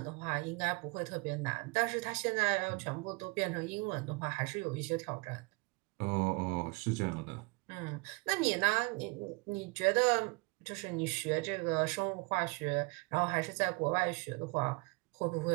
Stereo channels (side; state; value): left; quieter; 28.4 dB